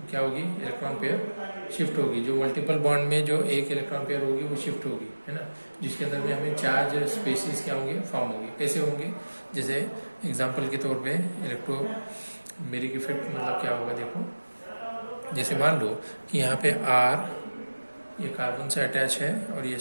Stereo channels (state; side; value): inverted; both; correlation -1.00